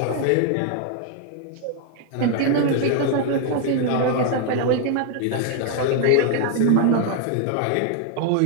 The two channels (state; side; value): different; both; correlation 0.00